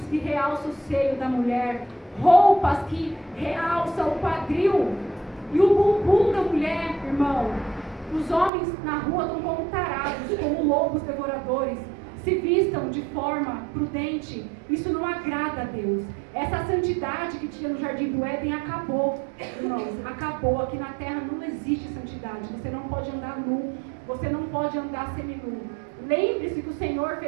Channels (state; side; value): drops out; left; at 8.5 s